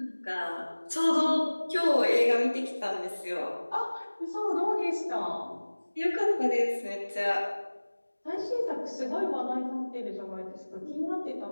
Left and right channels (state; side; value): inverted; both; correlation -1.00